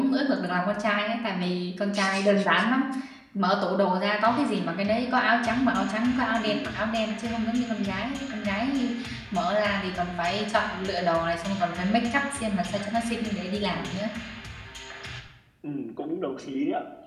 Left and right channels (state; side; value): identical; both; correlation 1.00